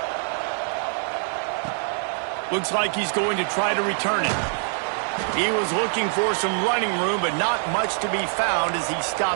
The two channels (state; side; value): silent; left; 59 dB below the other